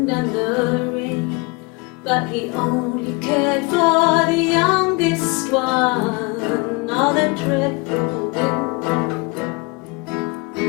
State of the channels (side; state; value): right; quieter; 28.4 dB